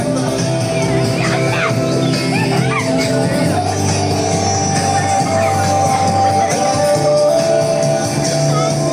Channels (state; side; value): identical; both; correlation 1.00